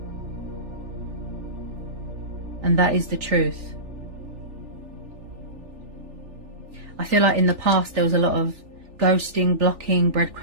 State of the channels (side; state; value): left; late; 3.4 ms